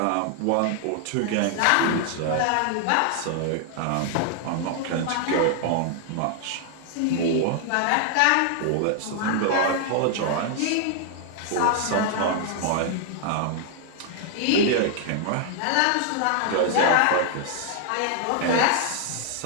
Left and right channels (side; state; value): both; different; correlation 0.00